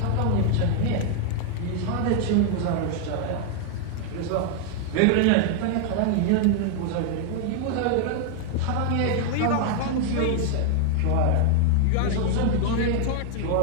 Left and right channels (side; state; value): both; different; correlation 0.00